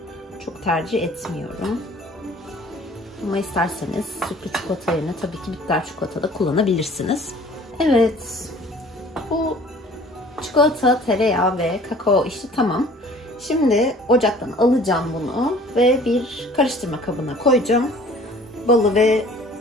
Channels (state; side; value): normal; both; correlation 0.51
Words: çok tercih etmiyorum. Ama isterseniz sütlü çikolata yerine tabii ki bitter çikolata da kullanabilirsiniz. Evet, bu çikolata, tereyağı ve kakao işi tamam. Şimdi ocaktan alacağım bunu ve bir karıştırma kabına koyacağım. Balı ve